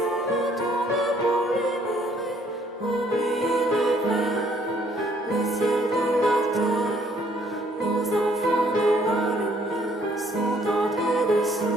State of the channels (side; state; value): both; normal; correlation 0.64